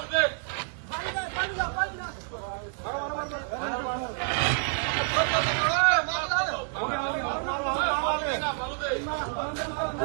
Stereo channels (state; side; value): silent; left; 58 dB below the other